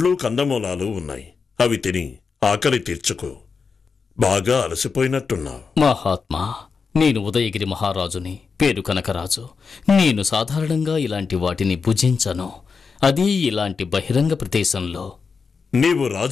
కందమూలాలు ఉన్నాయి. అవి తిని ఆకలి తీర్చుకో. బాగా అలసిపోయినట్టున్నావు. మహాత్మా, నేను ఉదయగిరి మహారాజుని, పేరు కనకరాజు. నేను సాధారణంగా ఇలాంటి వాటిని భుజించను, అది ఇలాంటి బహిరంగ ప్రదేశంలో. నీవు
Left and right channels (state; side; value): quieter; right; 5.3 dB